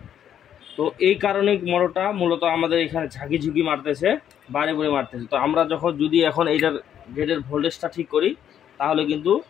তো এই কারণে মোটরটা মূলত আমাদের এখানে ঝাঁকি ঝুঁকি মারতেছে, বারে বারে মারতেছে। তো আমরা যদি এখন এইটার গেটের ভোল্টেজটা ঠিক করি, তাহলে কিন্তু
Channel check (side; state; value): right; quieter; 9.7 dB